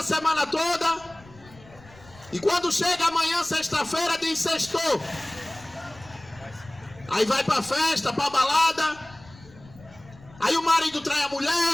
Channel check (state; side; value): noise; left; rumble, 23 dB below the sound